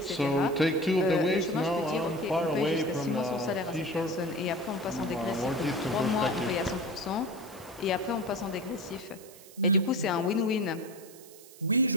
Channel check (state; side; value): noise; right; hiss, 20 dB below the sound